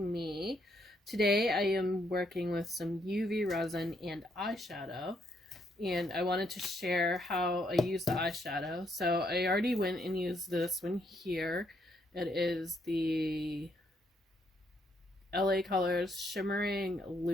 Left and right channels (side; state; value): both; normal; correlation 0.74